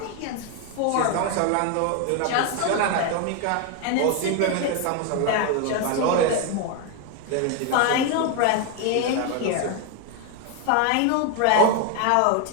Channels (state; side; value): different; both; correlation 0.01